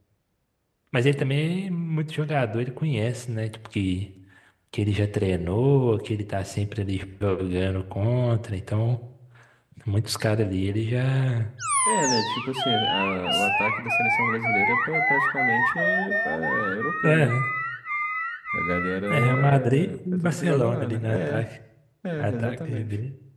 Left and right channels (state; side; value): identical; both; correlation 1.00